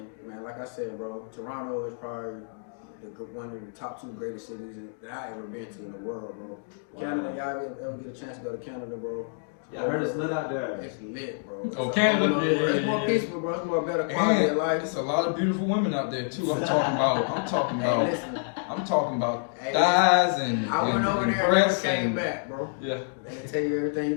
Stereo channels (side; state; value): right; silent; digital silence